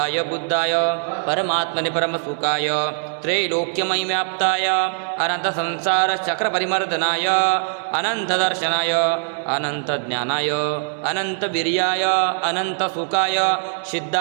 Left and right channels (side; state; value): left; silent; digital silence